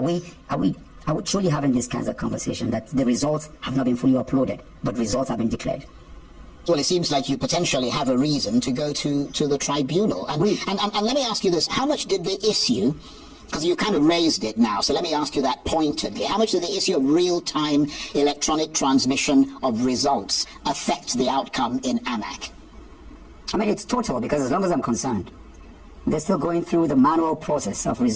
we truly having these kinds of conversation that the results have not been fully uploaded, but results have been declared? Well, it seems like you potentially have a reason to go to the tribunal. And let me ask you this. How much did the issue, because you kind of raised it now, so let me ask you that pointedly, how much did the issue of real-time electronic transmission of results affect the outcome in AMAC? I mean, it's total, because as long as I'm concerned, they're still going through the manual process of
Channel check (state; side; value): identical; both; correlation 1.00